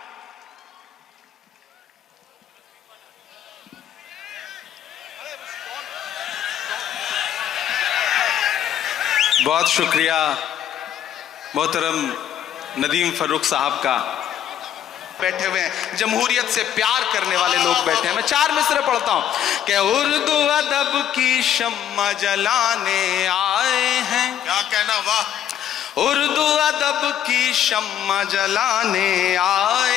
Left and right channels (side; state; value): right; quieter; 10.3 dB